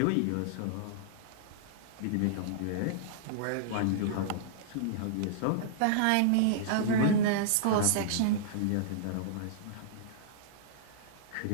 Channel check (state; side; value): different; both; correlation -0.02